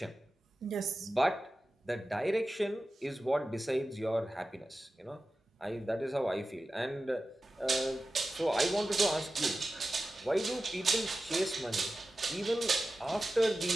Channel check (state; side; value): normal; both; correlation 0.94